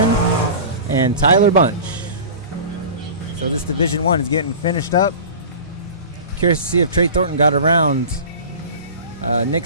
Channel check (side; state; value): both; inverted; correlation -0.36